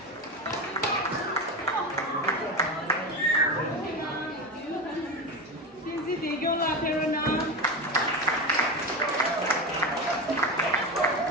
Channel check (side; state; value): both; normal; correlation 0.20